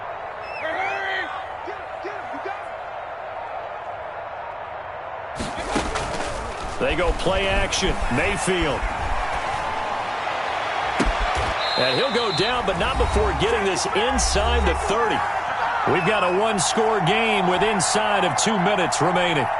They go play action. Mayfield. And he'll go down, but not before getting this inside the 30. We've got a one-score game with inside of 2 minutes remaining.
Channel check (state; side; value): identical; both; correlation 1.00